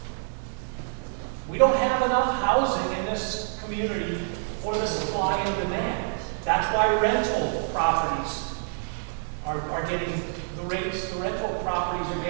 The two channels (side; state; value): left; silent; digital silence